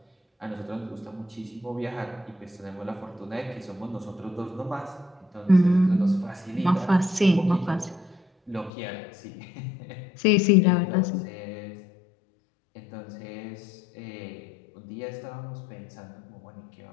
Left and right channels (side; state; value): right; drops out; at 8.7 s